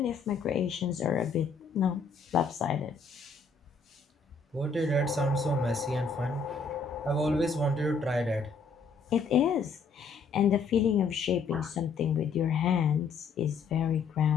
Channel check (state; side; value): quieter; right; 4.9 dB